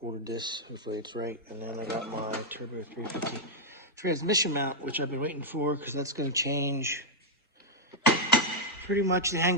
ordered this. Hopefully it's right. And then I got my Turbo 350 transmission mount, which I've been waiting for because that's going to change pretty much the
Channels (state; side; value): normal; both; correlation -0.04